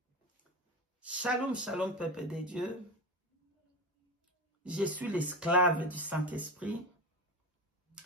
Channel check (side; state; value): both; normal; correlation 0.23